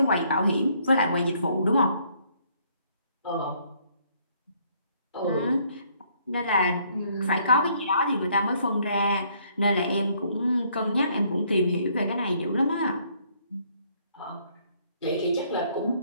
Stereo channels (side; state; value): both; inverted; correlation -0.66